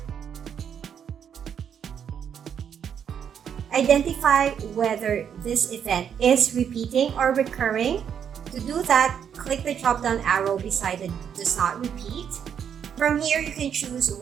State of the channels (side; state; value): left; quieter; 8.1 dB